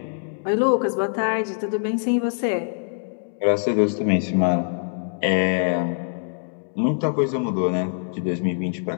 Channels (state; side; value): silent; right; 63 dB below the other